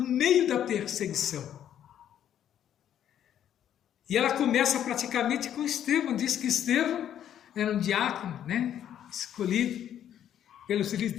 meio da perseguição. E ela começa praticamente com Estevão. Diz que Estevão era um diácono, né, escolhido pelos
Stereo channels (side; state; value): right; quieter; 10.3 dB